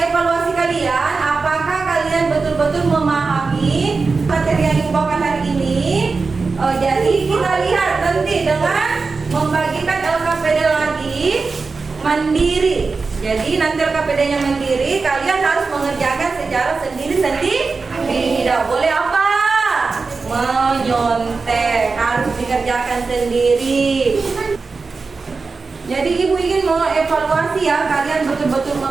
kalian apakah kalian betul-betul memahami materi yang ibu bawakan hari ini. Jadi kita lihat nanti dengan membagikan LKPD lagi mandiri. Jadi nanti LKPD-nya mandiri, kalian harus mengerjakan secara sendiri-sendiri. Tidak boleh apa? Menyontek, harus dikerjakan sendiri. Jadi ibu ingin mengevaluasi ya, kalian betul-betul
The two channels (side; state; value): left; quieter; 4.3 dB